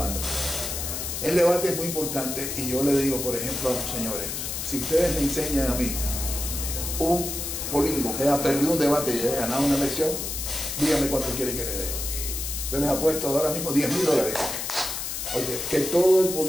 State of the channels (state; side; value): noise; left; hiss, 4 dB below the sound